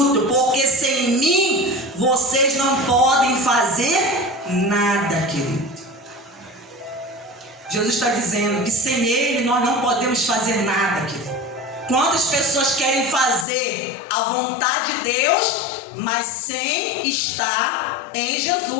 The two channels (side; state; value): right; drops out; at 13.5 s